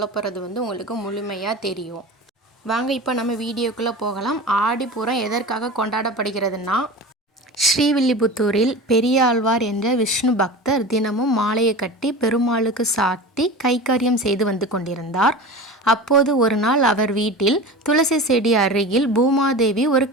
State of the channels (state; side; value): normal; both; correlation 0.32